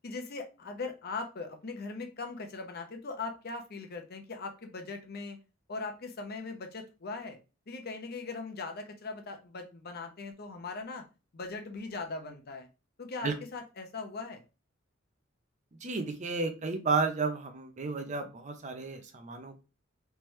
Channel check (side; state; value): both; normal; correlation 0.00